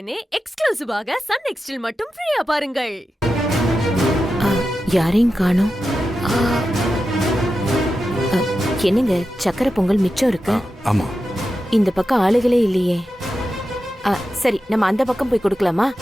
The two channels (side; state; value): both; normal; correlation 0.91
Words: எக்ஸ்க்ளூசிவாக சன் நெக்ஸ்டில் மட்டும் ஃப்ரீயா பாருங்கள். யாரையும் காணோம். என்னங்க சக்கரை பொங்கல் மிச்சம் இருக்கு? ஆமா. இந்த பக்கம் ஆளுகளே இல்லையே. சரி, நம்ம அந்த பக்கம் போய் கொடுக்கலாமா?